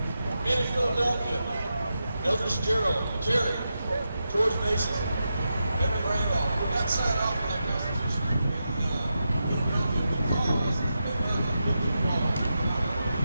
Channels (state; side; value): inverted; both; correlation -0.88